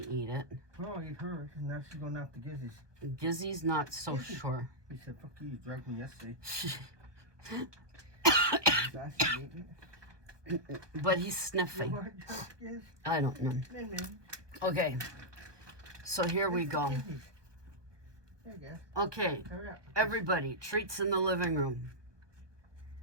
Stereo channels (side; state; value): left; late; 1.2 ms